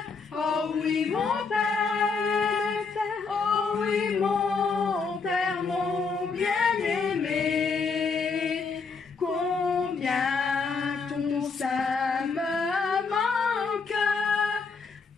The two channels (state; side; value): quieter; right; 4.9 dB